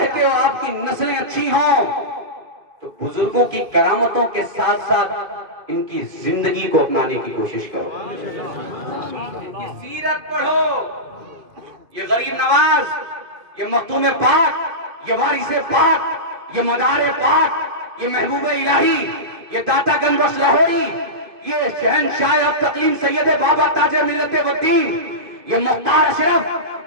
ہو آپ کی نسلیں اچھی ہوں تو بزرگوں کی کرامتوں کے ساتھ ساتھ ان کی زندگی کو اپنانے کی کوشش کرو, ان کی سیرت پڑھو. یہ غریب نواز, یہ مختوم پاک, یہ وارث پاک, یہ مدار پاک, یہ محبوب الہی, یہ داتا گنج بخش لاہوری, یہ شہنشاہ اب تقلیم سید بابا تاج ملت والدین, یہ مختار اشرف,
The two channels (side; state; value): left; late; 2.5 ms